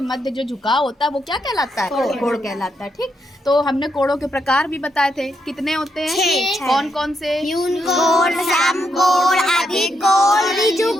मध्य जो झुकाव होता है वो क्या कहलाता है? कोड कहलाता है। ठीक, तो हमने कोड़ों के प्रकार भी बताए थे। कितने होते हैं? 6। कौन कौन से? न्यून कोण, सम कोण, अधिक कोण, ऋजु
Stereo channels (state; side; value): normal; both; correlation 0.80